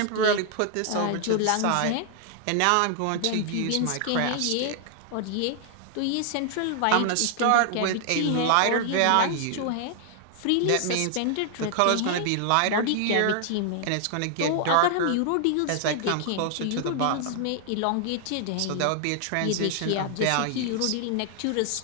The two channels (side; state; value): both; different; correlation 0.00